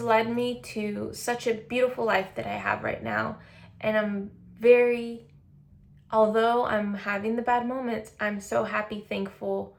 led me to such a beautiful life that I have right now. And although I'm having the bad moments, I'm so happy, thankful,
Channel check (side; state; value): both; identical; correlation 1.00